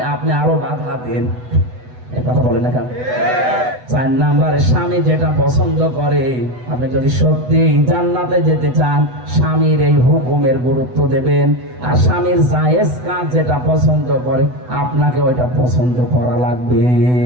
আপনি আরো বাধা দেন। এই কথা বলেন না কেন? 4 নম্বরে স্বামী যেটা পছন্দ করে, আপনি যদি সত্যি জান্নাতে যেতে চান, স্বামীর এই হুকুমের গুরুত্ব দেবেন। আর স্বামীর জায়েজ কাজ যেটা পছন্দ করে, আপনাকে ওইটা পছন্দ করা লাগবে।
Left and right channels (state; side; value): late; left; 8.0 ms